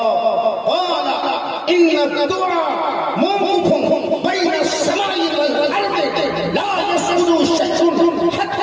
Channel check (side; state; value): both; identical; correlation 1.00